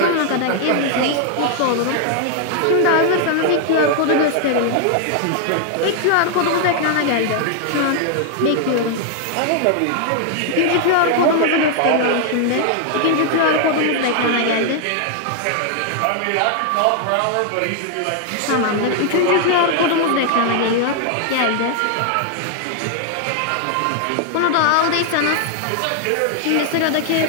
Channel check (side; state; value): both; different; correlation 0.00